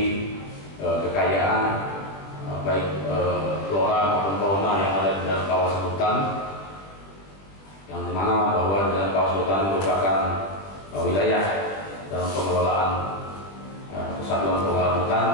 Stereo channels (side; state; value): right; late; 20 ms